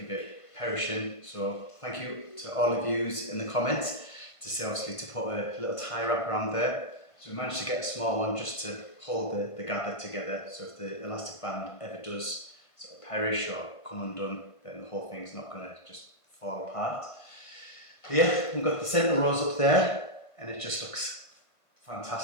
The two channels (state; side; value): late; right; 1.5 ms